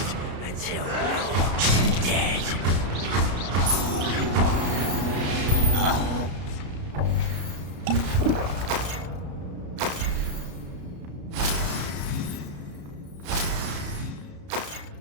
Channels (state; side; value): late; left; 33 ms